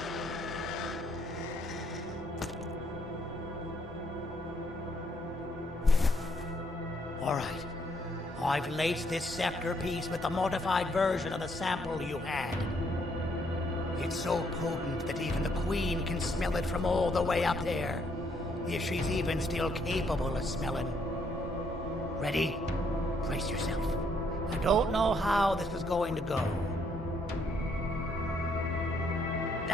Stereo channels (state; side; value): normal; both; correlation 0.71